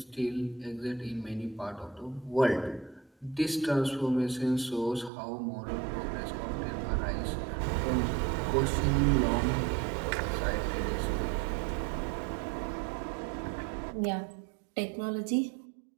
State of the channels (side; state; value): left; drops out; at 5.1 s